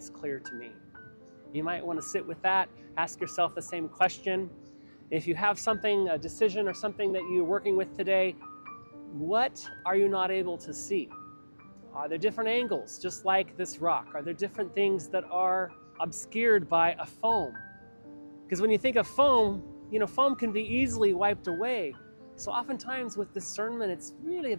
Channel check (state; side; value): inverted; both; correlation -1.00